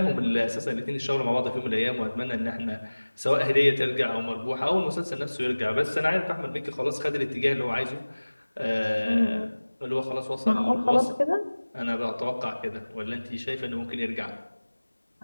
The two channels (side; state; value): both; inverted; correlation -1.00